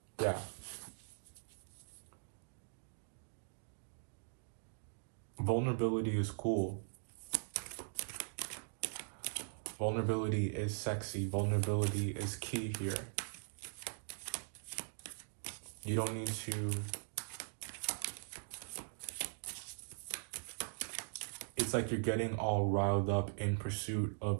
Yeah. Vulnerability is cool. Vulnerability is sexy. Vulnerability is key here. You don't need to... It's like you're getting all riled up in pursuit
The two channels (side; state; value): left; silent; digital silence